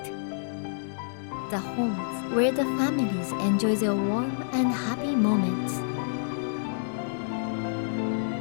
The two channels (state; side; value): silent; right; digital silence